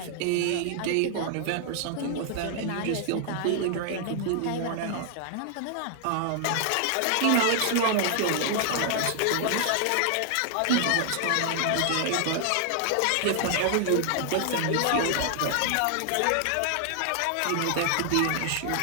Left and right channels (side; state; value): both; different; correlation 0.00